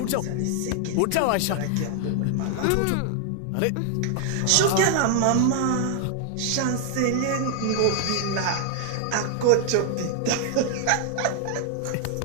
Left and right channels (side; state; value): both; different; correlation 0.00